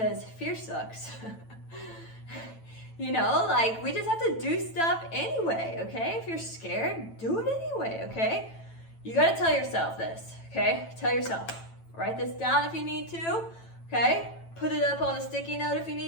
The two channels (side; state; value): right; late; 9.0 ms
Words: fear sucks. You know, like we just have to do stuff anyway, okay? If you're scared, do it anyway, okay? You gotta tell yourself this, okay? Tell yourself. Write this down if you need to, okay? Put it up on a sticky note if you